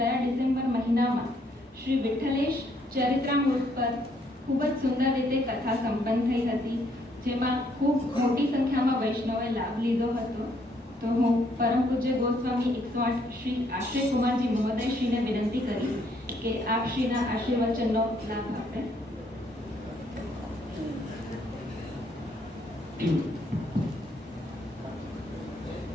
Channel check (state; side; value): normal; both; correlation 0.69